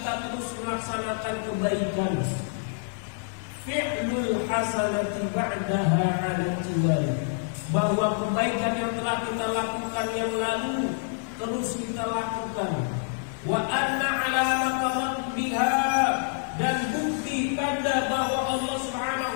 terus melaksanakan kebaikan. Fi'lul hasanati ba'daha 'ala tiwali, bahwa kebaikan yang telah kita lakukan yang lalu terus kita lakukan. Wa anna 'alamata raddiha, dan bukti tanda bahwa Allah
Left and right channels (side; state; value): right; silent; digital silence